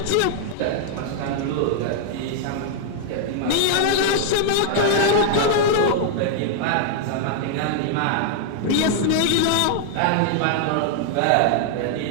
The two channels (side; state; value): both; different; correlation 0.00